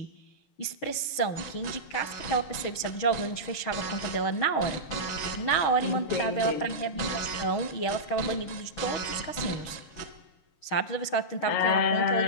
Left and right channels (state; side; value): late; right; 6.4 ms